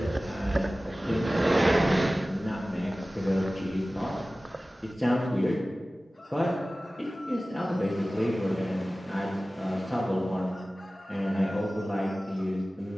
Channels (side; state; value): both; normal; correlation 0.97